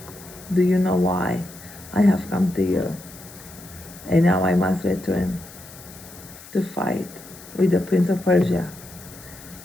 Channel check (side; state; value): left; noise; hiss, 18 dB below the sound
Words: "Do you know why I have come to you? And now I must return to fight with the prince of Persia.